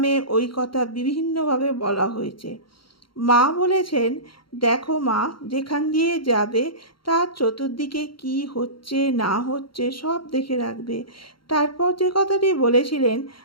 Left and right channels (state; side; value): late; right; 0.73 ms